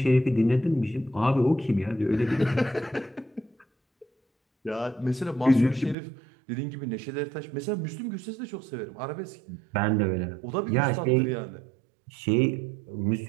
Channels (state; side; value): drops out; left; at 6.0 s